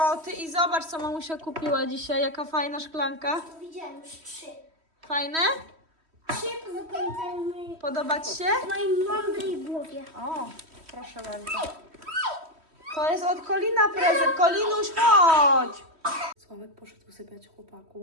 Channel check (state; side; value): late; left; 3.1 ms